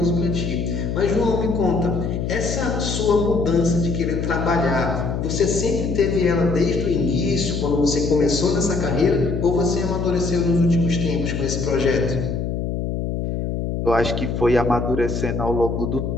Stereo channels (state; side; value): noise; left; hum, 2 dB below the sound